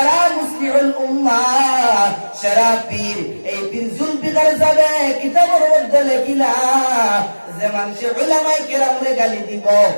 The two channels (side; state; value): both; inverted; correlation -1.00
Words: মুসলিহুল উম্মাহ সারা পীর। এই পীর জুলফিকার যাবে কিতাবের মধ্যে লেখিলা যে মানুষে উলামায়ে কেরামরে গালি দিব,